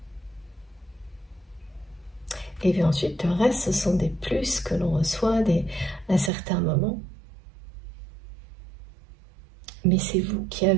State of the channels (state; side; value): drops out; left; at 6.3 s